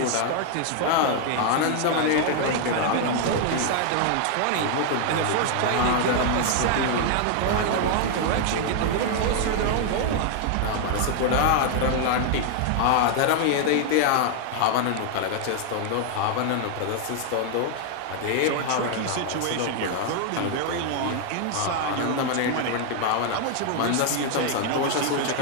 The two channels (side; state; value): both; different; correlation 0.00